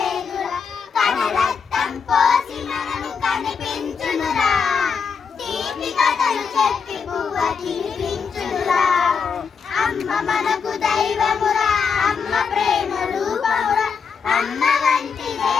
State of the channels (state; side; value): quieter; right; 6.0 dB